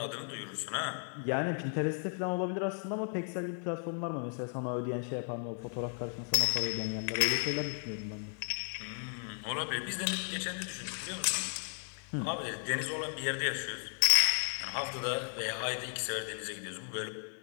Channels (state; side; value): silent; right; 54 dB below the other